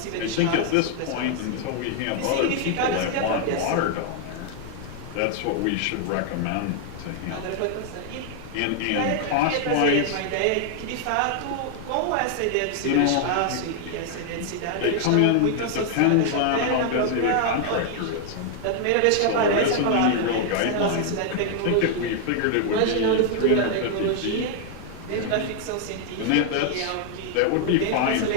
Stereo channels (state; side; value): different; both; correlation 0.00